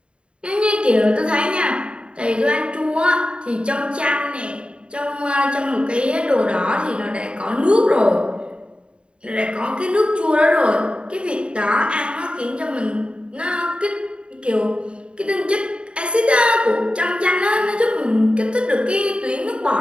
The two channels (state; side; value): late; left; 0.055 ms